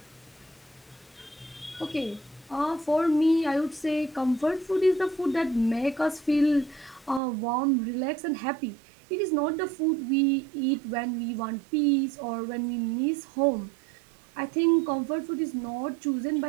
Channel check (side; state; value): left; drops out; at 7.2 s